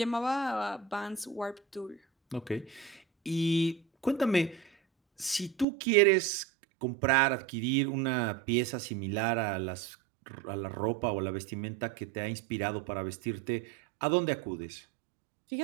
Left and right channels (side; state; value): left; drops out; at 5.7 s